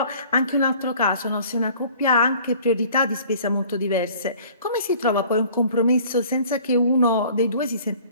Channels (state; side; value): inverted; both; correlation -0.51